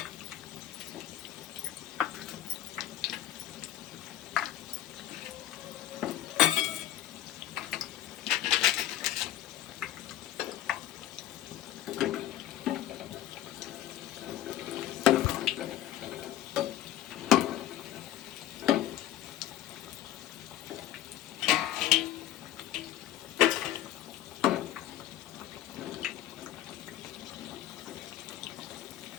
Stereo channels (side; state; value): right; quieter; 12.8 dB